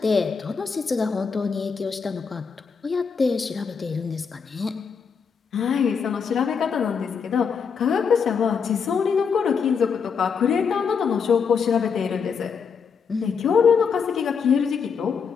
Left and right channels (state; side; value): quieter; right; 6.1 dB